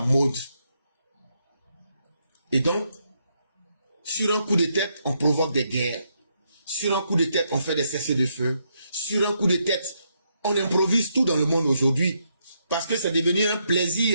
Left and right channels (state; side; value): inverted; both; correlation -0.78